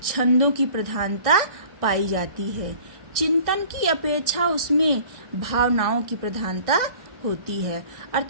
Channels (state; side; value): late; left; 1.6 ms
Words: छंदों की प्रधानता पाई जाती है। चिंतन की अपेक्षा उसमें भावनाओं की प्रधानता होती है।